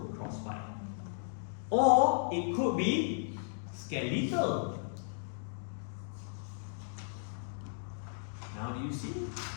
crossbite. Or it could be skeletal. Now do you see?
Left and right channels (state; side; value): silent; right; digital silence